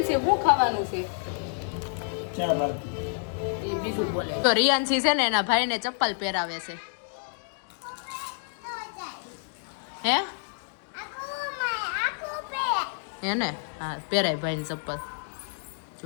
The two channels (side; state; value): right; silent; digital silence